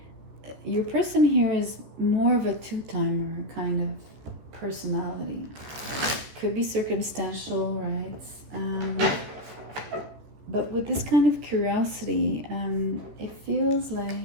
Your person here is more of a two-timer kind of personality. Could be circumstantial, right? But with this kind of curiosity, it feels like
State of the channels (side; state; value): left; late; 14 ms